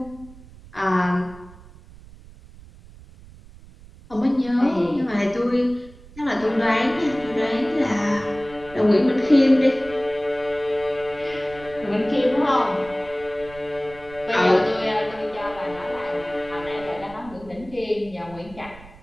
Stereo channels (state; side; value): noise; right; rumble, 20 dB below the sound